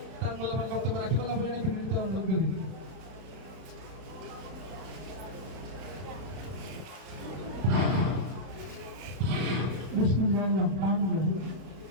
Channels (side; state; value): left; late; 32 ms